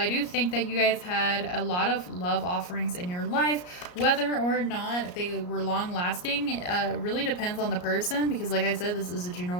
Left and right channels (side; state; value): right; late; 34 ms